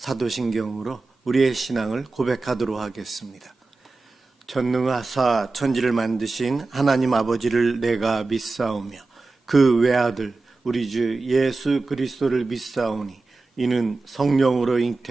우리의 신앙을 고백하도록 하겠습니다. 전능하사 천지를 만드신 하나님 아버지를 내가 믿사오며 그 외아들 우리 주 예수 그리스도를 믿사오니 이는 성령으로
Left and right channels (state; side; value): quieter; left; 3.6 dB